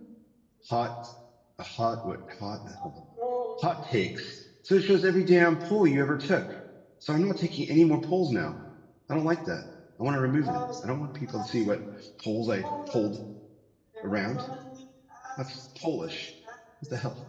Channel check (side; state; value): both; identical; correlation 1.00